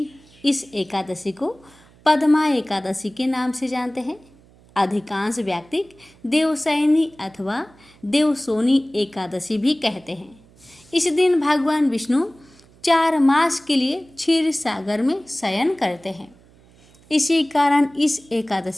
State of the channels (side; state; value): right; noise; hum, 28 dB below the sound